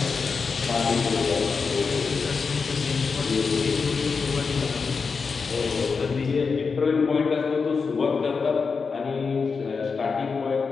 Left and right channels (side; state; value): right; quieter; 5.1 dB